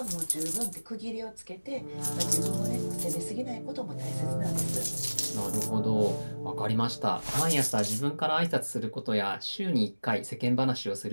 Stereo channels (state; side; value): inverted; both; correlation -1.00